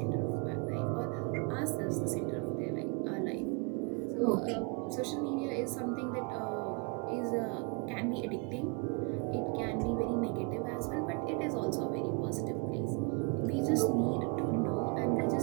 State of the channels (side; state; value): left; quieter; 33.6 dB